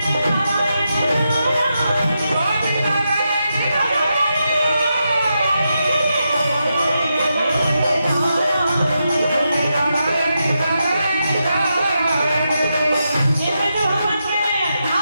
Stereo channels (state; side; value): inverted; both; correlation -0.86